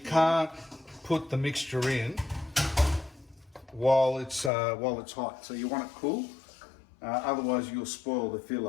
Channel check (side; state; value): right; drops out; at 4.5 s